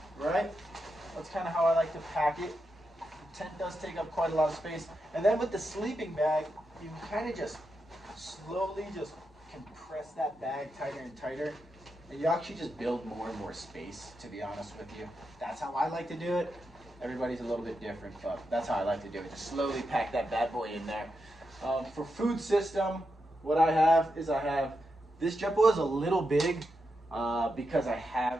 right? That's kind of how I like to pack it. The tent does take up quite a lot of space. And then with the sleeping bag, you can kind of just slowly just compress that bag tighter and tighter. And you actually just build more and more space, to be honest with you. That's how I like to do it. Everybody's a little bit different, but that's how I like to do it. Just slowly pack that bad boy in there. For food system, what I have is this JetBoil is a little big because I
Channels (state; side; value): normal; both; correlation 0.86